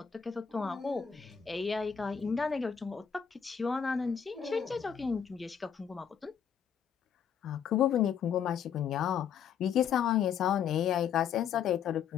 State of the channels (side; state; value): right; quieter; 7.7 dB